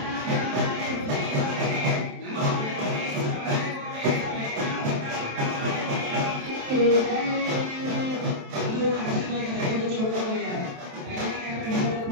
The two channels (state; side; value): late; left; 27 ms